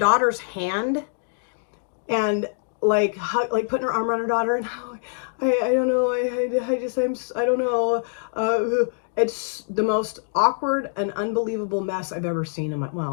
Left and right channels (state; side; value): silent; right; digital silence